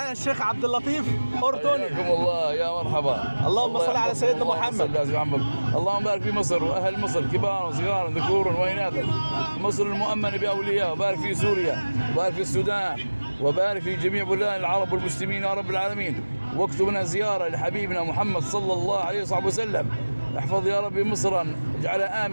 الشيخ عبد اللطيف أردني. حياكم الله يا مرحبا. اللهم صل على سيدنا محمد. اللهم بارك في مصر واهل مصر كبار وصغار ذكور واناث، مصر المؤمنه باولياء، وبارك في سوريا وبارك في السودان وبارك في جميع بلدان العرب والمسلمين يا رب العالمين. واكتب لنا زياره لحبيبنا محمد صلى الله عليه وصحبه وسلم. احفظ يا رب مصرا، اجعلها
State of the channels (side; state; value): both; inverted; correlation -1.00